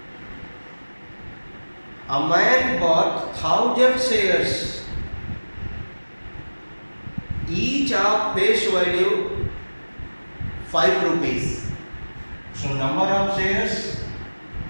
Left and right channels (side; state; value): both; inverted; correlation -1.00